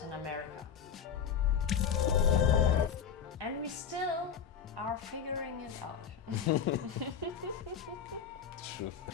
America. And we still are figuring it out. True.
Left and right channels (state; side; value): quieter; right; 7.6 dB